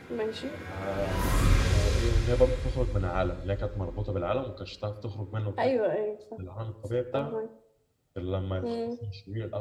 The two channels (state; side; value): identical; both; correlation 1.00